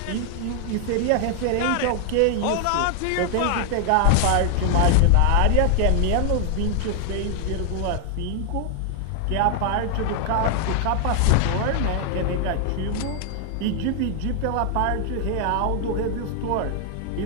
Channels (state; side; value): different; both; correlation 0.00